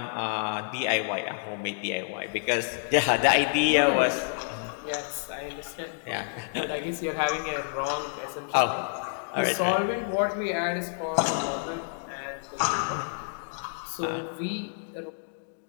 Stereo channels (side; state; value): right; silent; digital silence